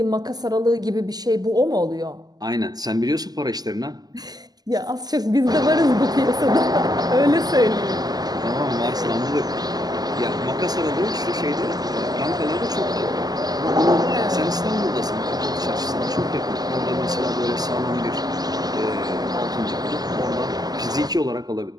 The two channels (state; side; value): late; left; 0.19 ms